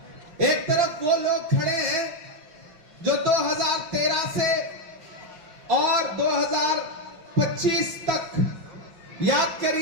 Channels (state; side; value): late; left; 5.7 ms